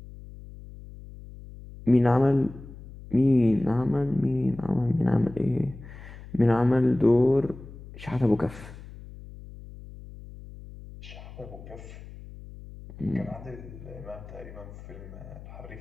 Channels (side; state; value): left; noise; hum, 16 dB below the sound